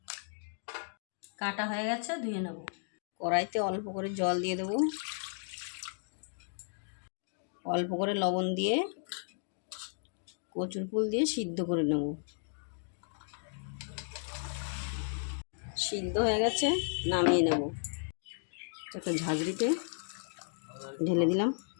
কাটা হয়ে গেছে, ধুয়ে নেব। কড়াইতে অল্প করে জল দিয়ে দেবো, অল্প করে লবণ দিয়ে কচুর ফুল দিয়ে সিদ্ধ করে নেব। সিদ্ধ হয়ে গেছে, নামিয়ে নেব। একটা ঝাঁঝরিতে ঢেলে দিলাম।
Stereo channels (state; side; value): silent; right; digital silence